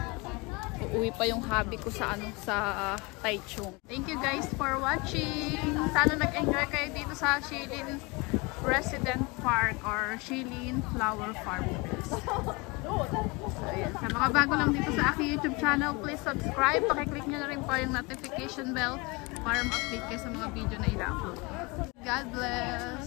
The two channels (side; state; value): right; quieter; 26.7 dB